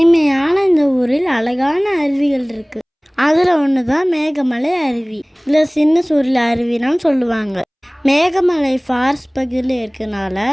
இந்த ஊரில் அழகான அருவிகள் இருக்கு. அதில் ஒன்று தான் மேகமலை அருவி, இல்லை சின்ன சூரியல் அருவின்னு சொல்லுவாங்க. மேகமலை ஃபாரஸ்ட் பகுதியில் இருக்கனால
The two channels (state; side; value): identical; both; correlation 1.00